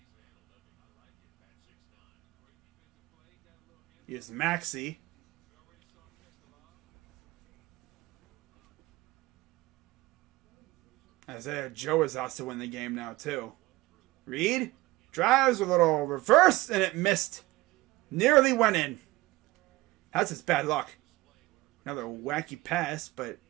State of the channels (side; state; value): left; quieter; 19.3 dB